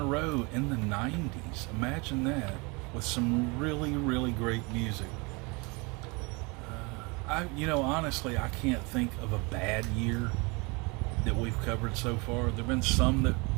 row in the 90s. Imagine that, with some really, really great music. Honestly, I can't think of a bad year that we've covered so far. There've been some that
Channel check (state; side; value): quieter; left; 28.3 dB